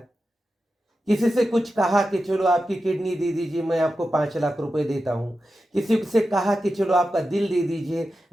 किसी से कुछ कहा कि चलो आपकी किडनी दे दीजिए, मैं आपको 5 लाख रुपए देता हूं। किसी से कहा कि चलो आपका दिल दे दीजिए,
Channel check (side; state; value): both; normal; correlation 0.91